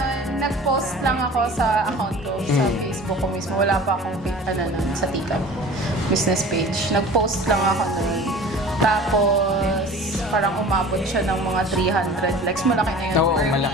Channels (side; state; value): both; normal; correlation 0.42